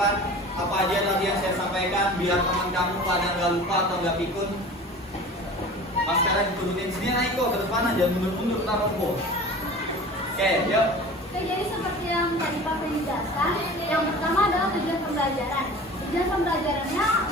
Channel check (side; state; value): both; normal; correlation 0.39